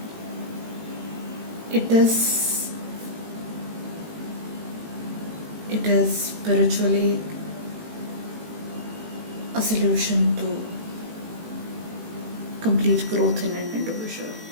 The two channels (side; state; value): left; late; 18 ms